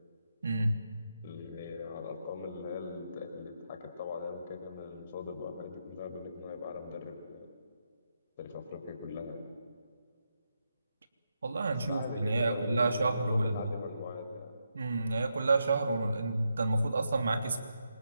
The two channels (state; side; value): inverted; both; correlation -0.83